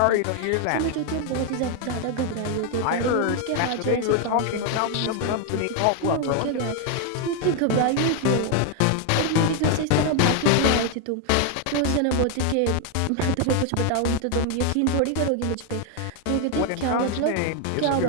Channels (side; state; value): both; different; correlation 0.00